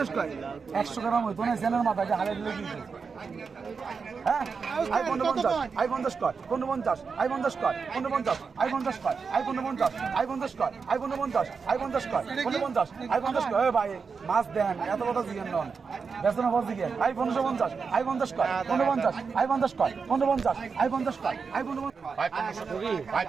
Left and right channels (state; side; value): quieter; left; 5.3 dB